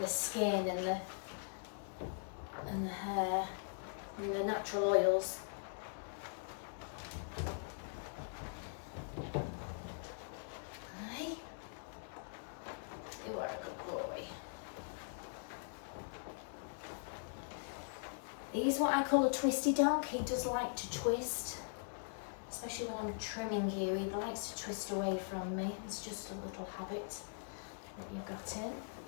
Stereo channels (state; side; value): silent; right; 50 dB below the other